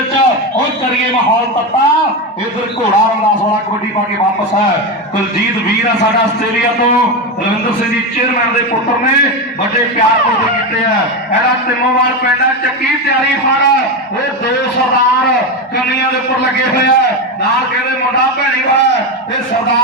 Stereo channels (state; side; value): normal; both; correlation 0.14